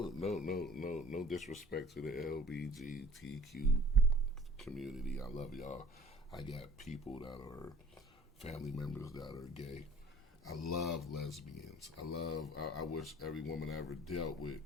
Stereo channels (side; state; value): both; normal; correlation 0.51